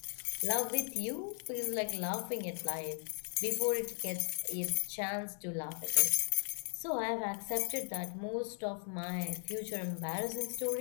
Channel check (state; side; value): silent; right; 53 dB below the other